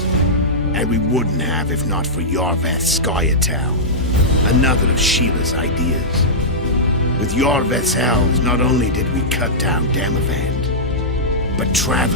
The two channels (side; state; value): both; normal; correlation -0.13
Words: And we wouldn't have if not for Yorveth Scoia'tael, another of Sheila's ideas. With Yorveth's elves, not only did we cut down Demavend, but